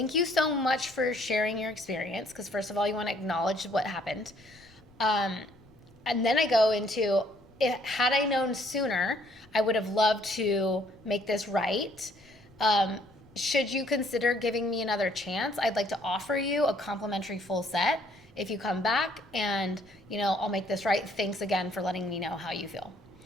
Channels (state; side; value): noise; left; rumble, 28 dB below the sound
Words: you so much for sharing your experience. Because first of all, you want to acknowledge what happened. And then I go into, had I known sooner, I would have loved to make this right. Should you consider giving me another chance? I'd like to offer you a complimentary full set if you come back, and I'll make this right. Thanks again for letting me know how you feel.